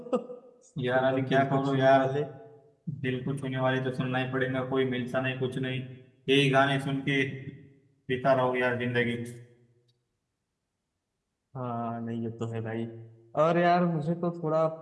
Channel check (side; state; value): both; identical; correlation 1.00